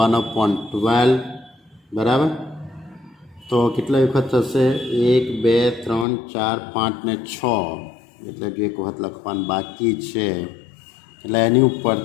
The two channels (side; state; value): right; drops out; at 6.1 s